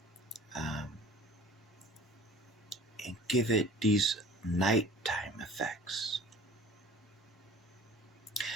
And give it these nighttime effects.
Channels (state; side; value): normal; both; correlation 0.46